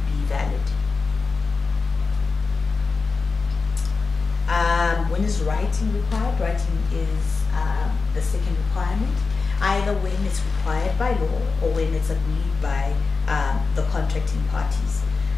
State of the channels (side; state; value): right; quieter; 4.4 dB